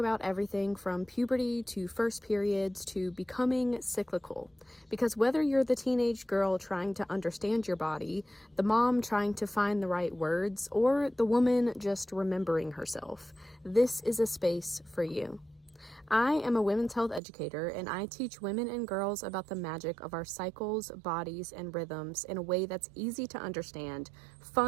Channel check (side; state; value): left; drops out; at 17.2 s